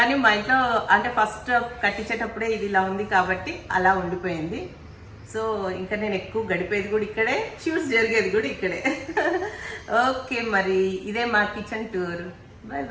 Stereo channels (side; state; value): both; identical; correlation 1.00